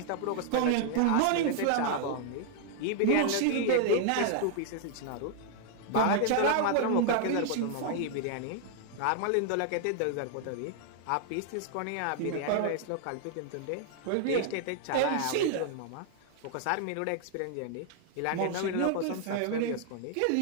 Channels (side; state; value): both; different; correlation 0.00